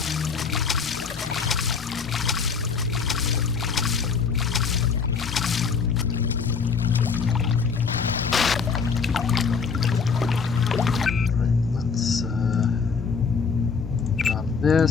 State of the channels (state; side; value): quieter; right; 5.5 dB